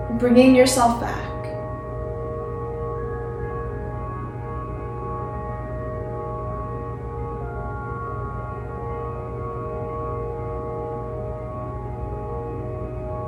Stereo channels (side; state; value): both; identical; correlation 1.00